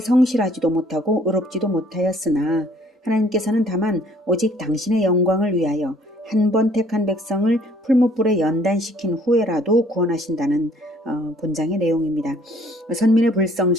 못하고 의롭지도 못하였으나 하나님께서는 다만 오직 당신의 영광을 위하여 한 번 택한 백성을 풀무불에 연단시킨 후에라도 구원하신다는 본장의 내용입니다. 선민의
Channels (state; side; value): normal; both; correlation 0.59